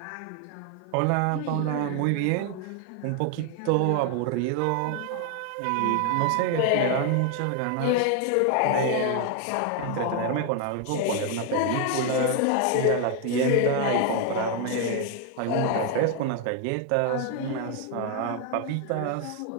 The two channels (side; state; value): both; different; correlation 0.01